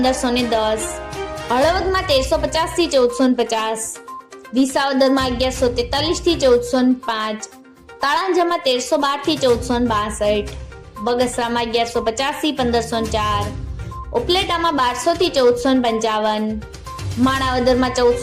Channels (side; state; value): both; identical; correlation 1.00